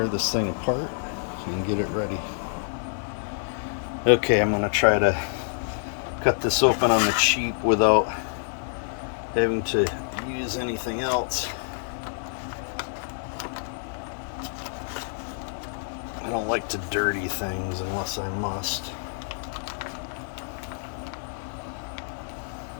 this thing apart and get it ready. Okay, I'm gonna try to cut this open on the cheap without having to use anything else. I don't like to dirty things unless I must.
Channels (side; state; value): right; silent; 60 dB below the other